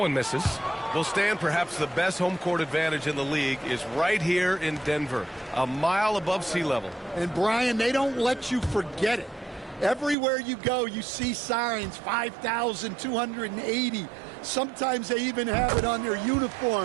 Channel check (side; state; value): left; drops out; at 10.2 s